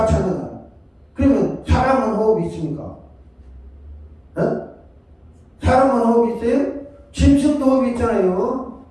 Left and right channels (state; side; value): identical; both; correlation 1.00